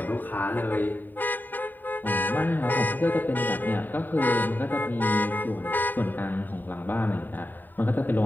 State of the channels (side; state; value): right; late; 0.090 ms